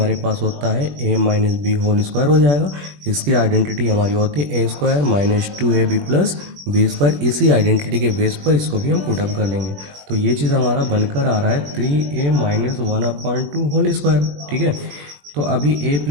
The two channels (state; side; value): late; left; 21 ms